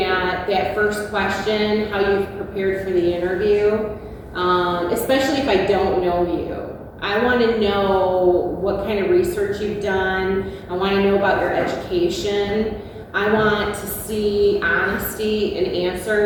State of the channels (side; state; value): both; identical; correlation 1.00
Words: at that first question, how you've prepared for the interview, especially if I don't know you. I want to know what kind of research you've done. I want to know about your education. I want to see honesty in